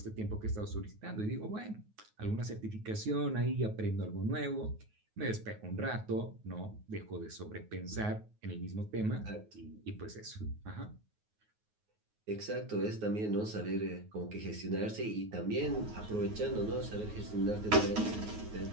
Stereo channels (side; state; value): left; late; 9.4 ms